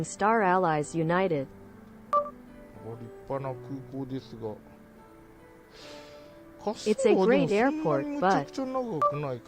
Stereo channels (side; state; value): both; identical; correlation 1.00